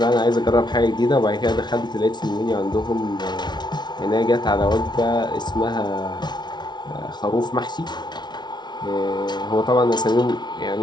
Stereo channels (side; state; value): right; late; 0.20 ms